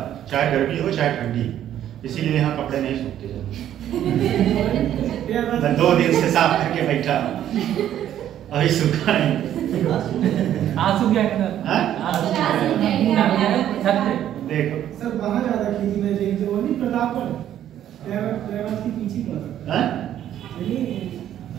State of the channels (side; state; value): left; quieter; 11.2 dB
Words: चाहे गर्मी हो चाहे ठंडी, इसीलिए यहाँ कपड़े नहीं सूखते। मैं 2 दिन से साफ करके बैठा, अभी सूखा नहीं। देखो सर वहाँ ज्यादा खेती में देखते हो नहीं, प्रतापगढ़ की पीछे पड़ा।